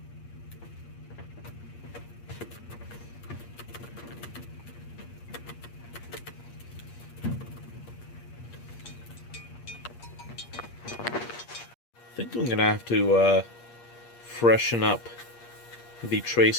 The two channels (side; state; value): right; late; 8.5 ms